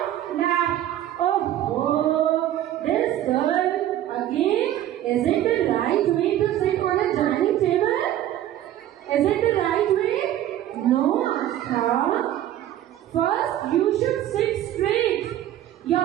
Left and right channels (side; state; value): left; quieter; 12.4 dB